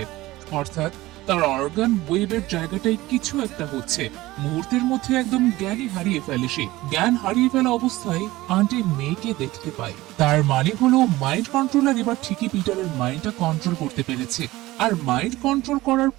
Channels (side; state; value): left; quieter; 18.2 dB